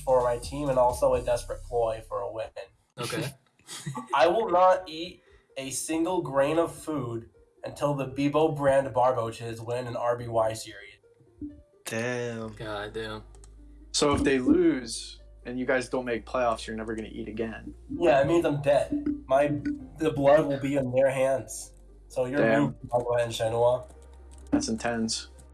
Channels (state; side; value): identical; both; correlation 1.00